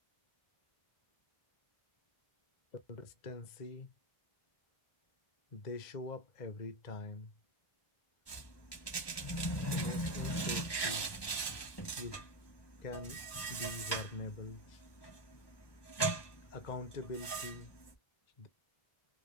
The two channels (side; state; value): right; late; 1.2 ms